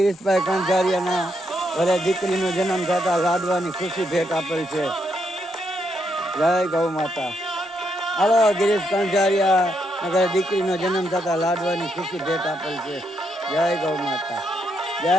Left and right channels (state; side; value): normal; both; correlation 0.78